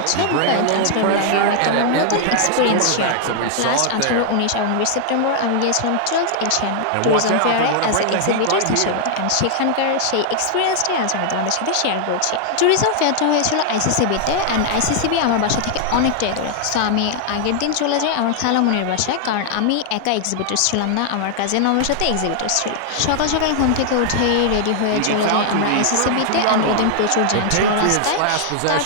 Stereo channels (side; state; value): both; different; correlation 0.00